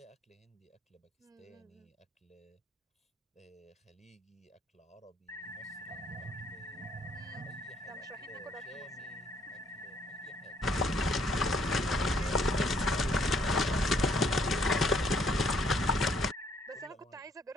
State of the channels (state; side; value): normal; both; correlation 0.66